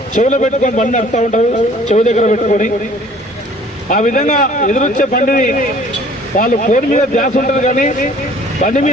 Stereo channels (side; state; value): both; normal; correlation 0.53